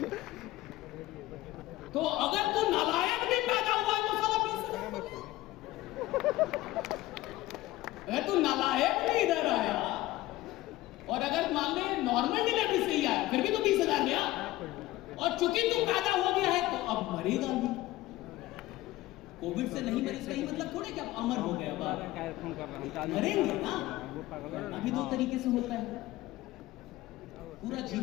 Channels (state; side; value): quieter; right; 17.3 dB